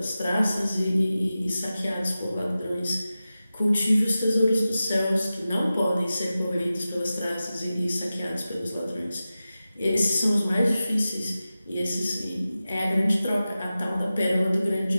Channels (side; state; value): both; inverted; correlation -0.94